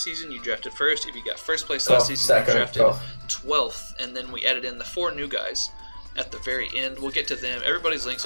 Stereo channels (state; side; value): inverted; both; correlation -1.00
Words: season, you drafted first. If you got first place last season, you drafted 12th. And then we added in the 4 new guys at the very end. We'll get to them. Everybody's links